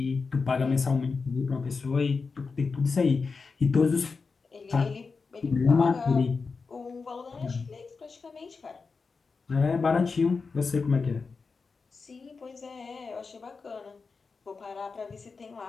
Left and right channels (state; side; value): quieter; right; 4.7 dB